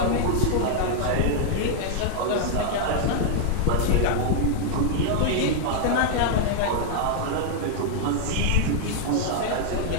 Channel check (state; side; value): different; both; correlation -0.01